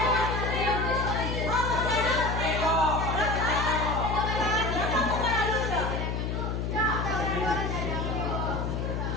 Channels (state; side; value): noise; left; hum, 1 dB below the sound